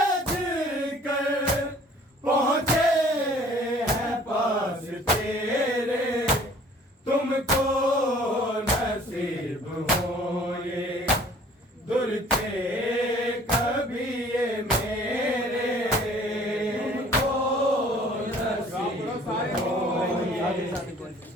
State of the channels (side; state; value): both; normal; correlation 0.53